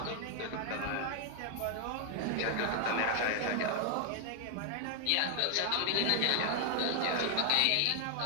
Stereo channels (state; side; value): different; both; correlation 0.00